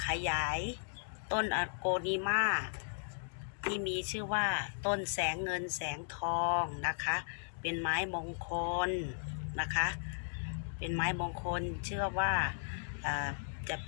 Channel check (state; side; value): silent; right; digital silence